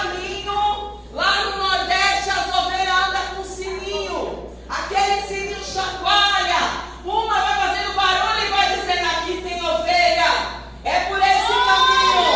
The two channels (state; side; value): identical; both; correlation 1.00